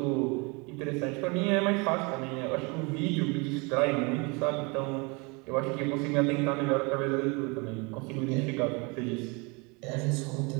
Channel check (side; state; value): left; quieter; 29.5 dB